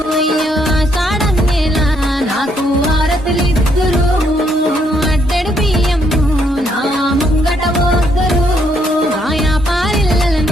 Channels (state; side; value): normal; both; correlation 0.72